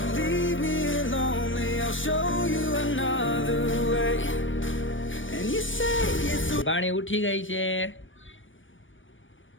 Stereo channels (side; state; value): right; late; 0.56 ms